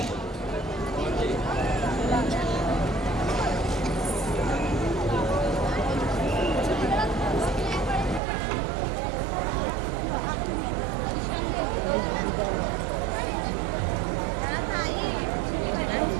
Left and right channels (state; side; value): drops out; left; at 8.2 s